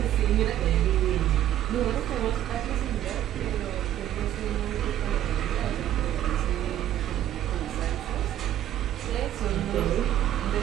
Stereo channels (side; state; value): left; quieter; 12.1 dB